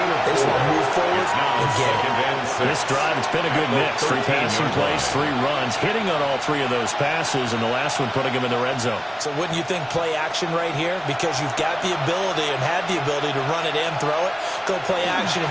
they just want to move forward and get it. This drive, it's been a good mix. 3 passing plays, 3 runs, hitting on all 3 of those passes, and the last one putting them in the red zone. So wouldn't you think play action right here? Because you've got the ability and had the ability to run it and throw it. Go play action and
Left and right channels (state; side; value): identical; both; correlation 1.00